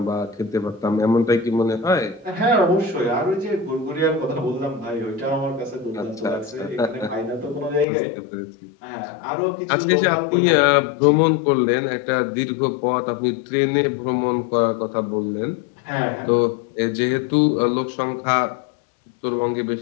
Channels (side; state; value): right; drops out; at 7.9 s